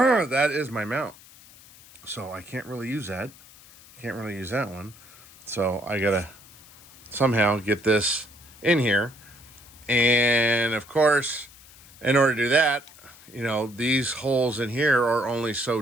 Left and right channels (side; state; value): left; noise; hiss, 23 dB below the sound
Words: is my mount. So I can't really use that. I can't really use that one. So I gotta somehow get this in here. And of course, in order to do that, you know, these holes in here are only so